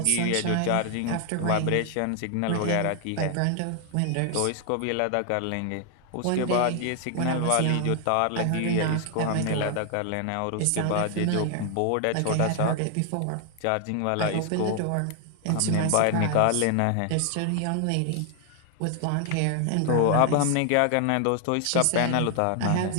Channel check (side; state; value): both; different; correlation 0.00